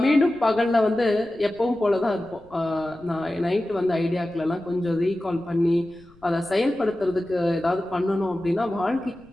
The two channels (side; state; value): left; noise; rumble, 28 dB below the sound